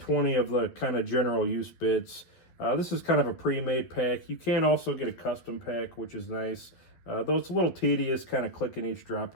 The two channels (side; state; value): right; late; 12 ms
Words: of the kind of general use bits. This is kind of a pre-made pack. You can also get a custom pack, which is nice, though it's a little tedious kind of clicking each drop